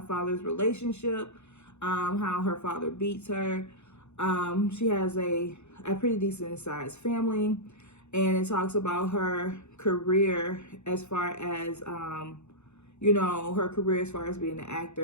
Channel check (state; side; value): late; right; 0.82 ms